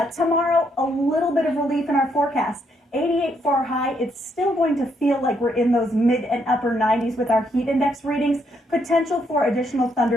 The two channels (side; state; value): both; normal; correlation 0.74